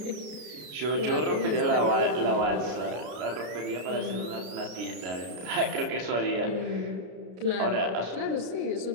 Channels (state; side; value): late; left; 33 ms